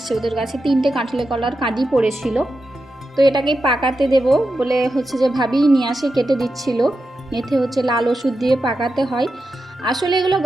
ওদের গাছে 3টে কাঁঠালে কলার কাঁদি পড়েছিল, তো এটাকেই পাকাতে দেব বলে হচ্ছে যে ভাবি নিয়ে আসে, কেটে দিচ্ছিল। এতে হচ্ছে লাল ওষুধ দিয়ে পাকাতে হয়। আসলে এগুলো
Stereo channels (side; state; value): both; normal; correlation 0.89